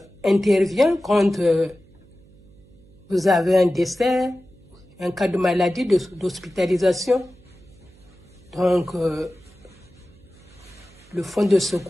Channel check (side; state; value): right; noise; hum, 26 dB below the sound